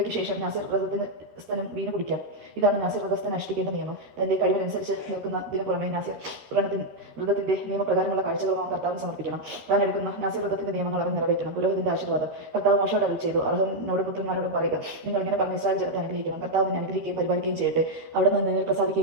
ശേഷം നാസിർ വ്രതസ്ഥനും വീഞ്ഞു കുടിക്കാം. ഇതാണ് നാസിർ വ്രതസ്ഥൻ അനുഷ്ഠിക്കേണ്ട നിയമം. തന്റെ കഴിവിനനുസരിച്ച് നിൽക്കുന്നതിന് പുറമെ നാസിർ വ്രതത്തിന്റെ നിയമപ്രകാരമുള്ള കാഴ്ചകളും കർത്താവിന് സമർപ്പിക്കണം. താൻ എടുക്കുന്ന നാസിർ വ്രതത്തിന്റെ നിയമങ്ങൾ അവൻ നിറവേറ്റണം. പുരോഹിതന്റെ ആശീർവാദം. കർത്താവ് മോശയോട് അരുളി ചെയ്തു, അഹരോനോടും പുത്രന്മാരോടും പറയുക, നിങ്ങൾ ഇങ്ങനെ പറഞ്ഞ ഇസ്രായേൽ ജനത്തെ അനുഗ്രഹിക്കണം. കർത്താവ് നിന്നെ അനുഗ്രഹിക്കുകയും പരിപാലിക്കുകയും ചെയ്യട്ടെ. അവിടെ നിന്ന് നിന്നിൽ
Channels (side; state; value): left; late; 13 ms